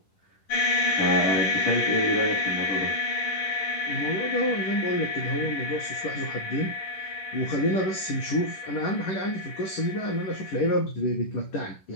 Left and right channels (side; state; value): right; late; 11 ms